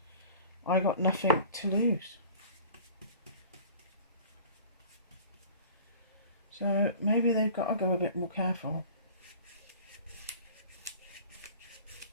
I got nothing to lose. So maybe they've got to go a bit more careful.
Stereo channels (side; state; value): both; inverted; correlation -0.44